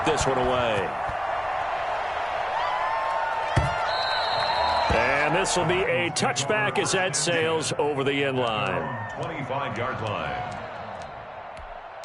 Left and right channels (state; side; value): identical; both; correlation 1.00